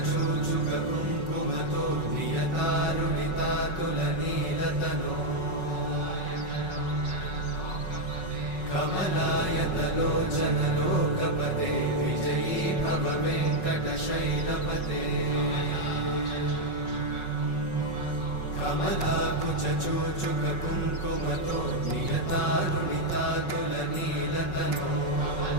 नियतारुणितातुलनीलतनो कमलायतलोचनलोकपते विजयी भव वेङ्कटशैलपते कमलाकुचूचुककुङ्कुमतो नियतारुणितातुलनीलतनो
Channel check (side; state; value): right; late; 5.4 ms